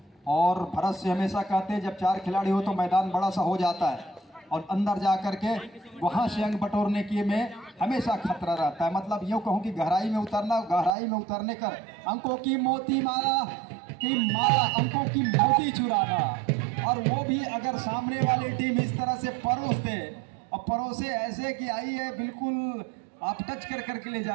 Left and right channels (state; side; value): drops out; left; at 10.9 s